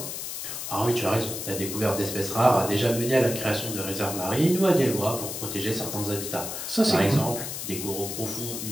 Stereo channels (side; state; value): left; noise; hiss, 6 dB below the sound